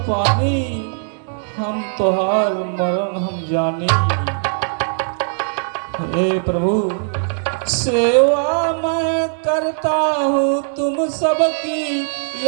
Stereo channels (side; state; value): left; silent; digital silence